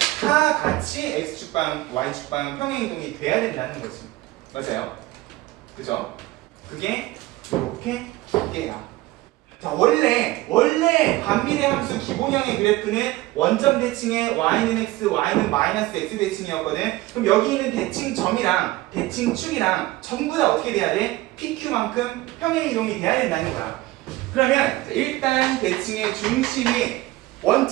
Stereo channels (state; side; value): quieter; left; 18.3 dB